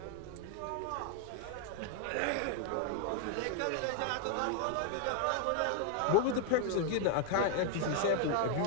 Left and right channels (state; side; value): different; both; correlation 0.01